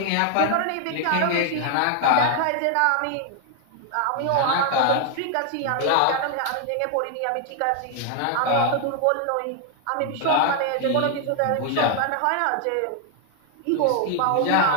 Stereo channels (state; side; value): different; both; correlation 0.00